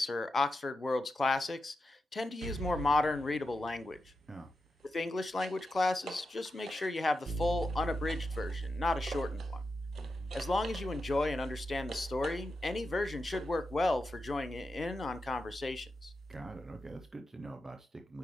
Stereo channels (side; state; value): both; normal; correlation 0.88